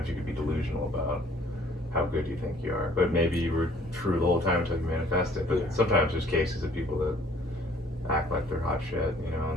you could be delusional about how good you think you are, but maybe you were true the whole time until you manifest it. But sometimes there's cases of people that act like they're hot shit, you know,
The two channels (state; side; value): normal; both; correlation 0.57